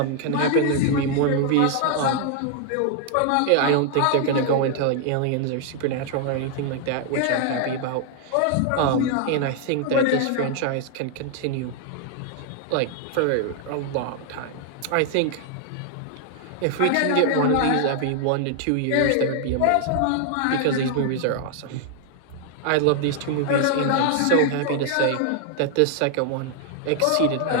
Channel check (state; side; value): different; both; correlation 0.00